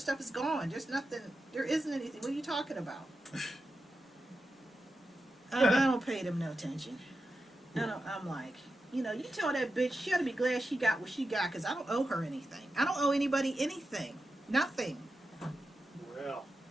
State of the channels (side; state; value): both; normal; correlation 0.90